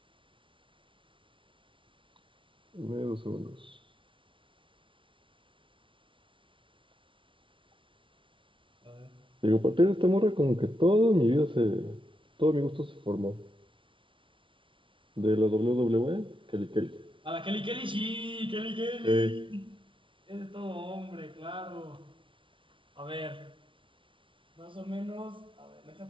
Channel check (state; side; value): late; left; 0.25 ms